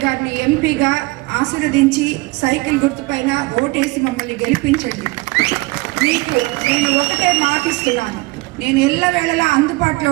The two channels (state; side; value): quieter; left; 22.9 dB